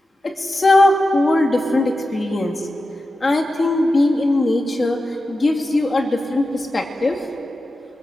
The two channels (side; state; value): both; normal; correlation 0.91